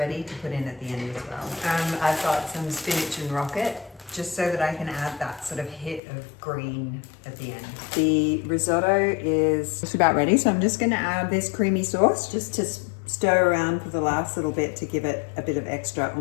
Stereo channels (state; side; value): drops out; right; at 6.0 s